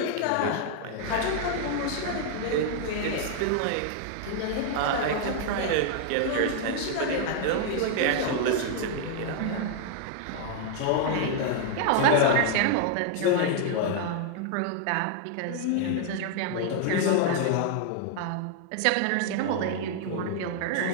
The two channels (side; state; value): both; different; correlation 0.00